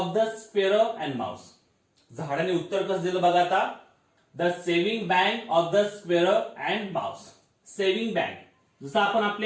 the squirrel and mouse. झाडाने उत्तर कसं दिलं बघा आता, the saving bank of the squirrel and mouse. Saving bank जसं आपण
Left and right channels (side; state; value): both; identical; correlation 1.00